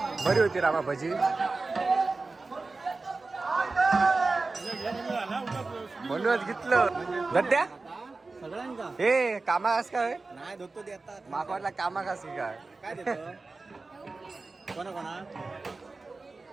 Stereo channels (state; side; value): quieter; left; 3.7 dB